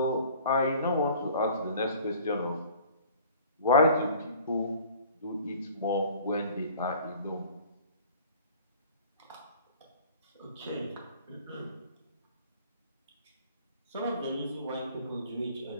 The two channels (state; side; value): inverted; both; correlation -0.49